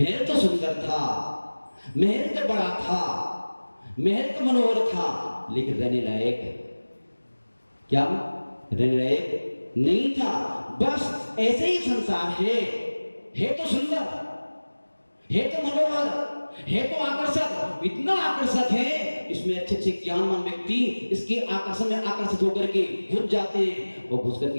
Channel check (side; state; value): both; inverted; correlation -1.00